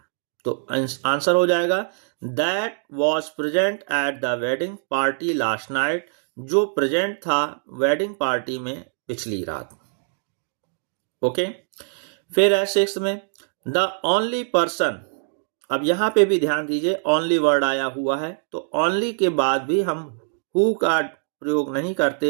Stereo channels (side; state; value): left; silent; digital silence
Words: तो आंसर हो जाएगा that was present at the wedding party last night, जो प्रेजेंट था वेडिंग पार्टी में पिछली रात। ओके, फिर है सिक्स्थ में द ओनली पर्सन, अब यहां पे भी ध्यान दीजिए ओनली वर्ड आया हुआ है, तो ओनली के बाद भी हम हु का प्रयोग नहीं करते,